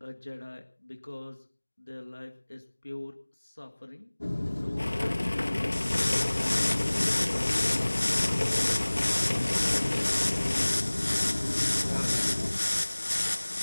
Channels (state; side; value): inverted; both; correlation -1.00